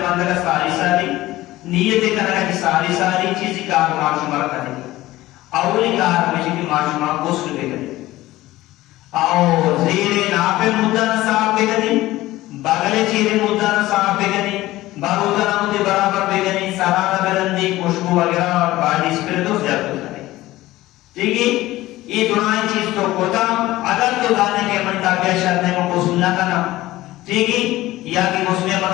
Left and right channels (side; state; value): right; quieter; 17.0 dB